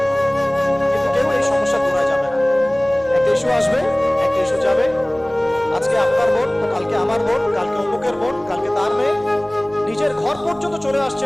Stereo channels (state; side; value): noise; right; hum, 23 dB below the sound